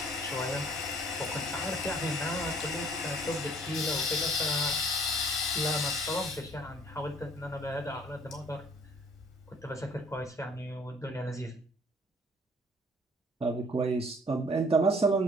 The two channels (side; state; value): both; normal; correlation 0.56